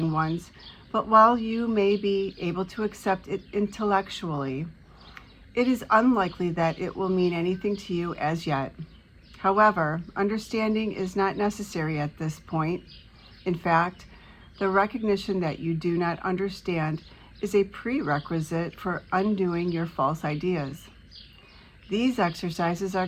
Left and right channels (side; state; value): both; identical; correlation 1.00